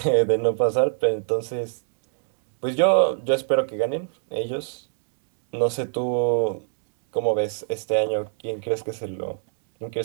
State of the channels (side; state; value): left; silent; digital silence